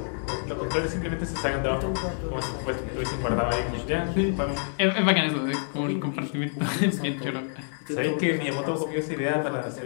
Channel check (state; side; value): silent; right; 60 dB below the other